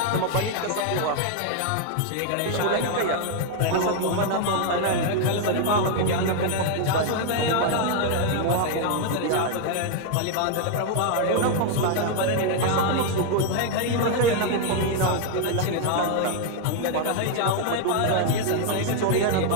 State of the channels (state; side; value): different; both; correlation 0.01